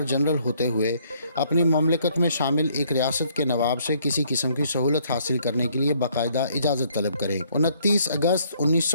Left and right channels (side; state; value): both; inverted; correlation -0.65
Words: جنرل ہوتے ہوئے اپنی مملکت میں شامل ایک ریاست کے نواب سے کسی قسم کی سہولت حاصل کرنے کے لیے باقاعدہ اجازت طلب کریں۔ 29 اگست